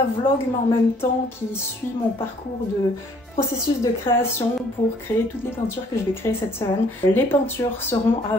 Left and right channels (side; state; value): both; normal; correlation 0.60